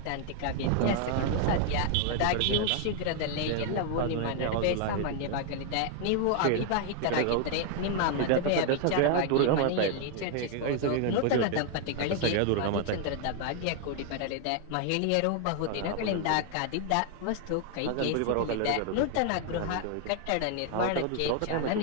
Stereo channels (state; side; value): different; both; correlation 0.00